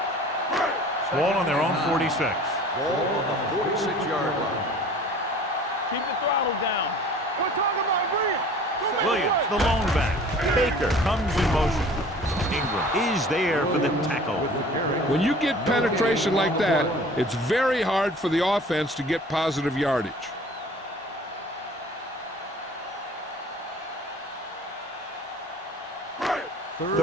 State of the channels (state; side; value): normal; both; correlation 0.47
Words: Ball on their own 46. Ball on the 46-yard line. Keep the throttle down. We're talking about Williams. Williams, the lone back. Baker comes in motion. Ingram is there for the tackle. When you get penetration like that, it's very hard for the offense to get positive yardage.